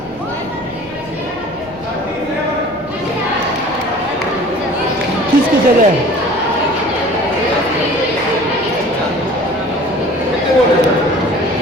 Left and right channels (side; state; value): both; normal; correlation 0.46